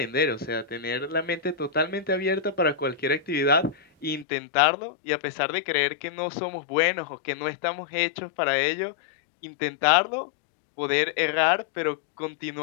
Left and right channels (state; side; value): drops out; right; at 4.2 s